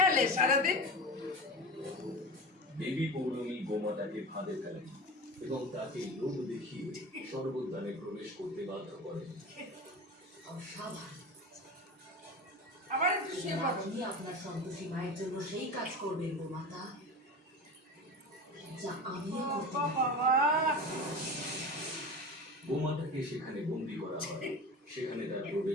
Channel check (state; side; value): normal; both; correlation 0.30